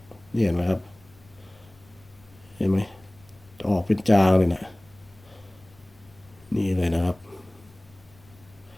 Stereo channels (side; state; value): left; noise; rumble, 27 dB below the sound